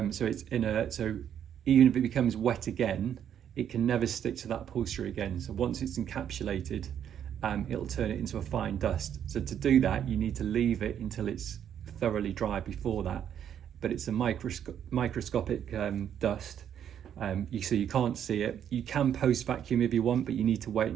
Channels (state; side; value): quieter; left; 9.4 dB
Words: so it's inert. So even if it becomes wet again, it can never stick to that upholstery again. So once it's encapsulated, it'll turn it into a fine dust. So to do that, you need to leave it until it's thoroughly dry before that. But it's a microscopic dust. So you can't see it. You can post vacuum if you want, but you need to wait